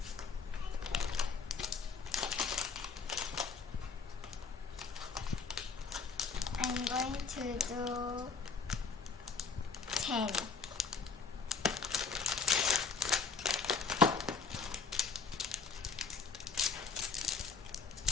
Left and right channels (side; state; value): right; quieter; 5.0 dB